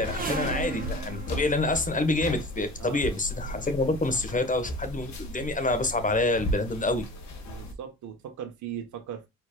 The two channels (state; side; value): normal; both; correlation 0.38